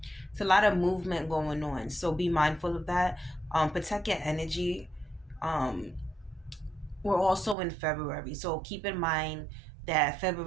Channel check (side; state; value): left; drops out; at 7.6 s